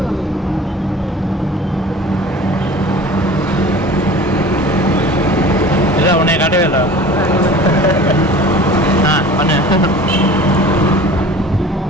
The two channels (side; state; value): both; normal; correlation 0.42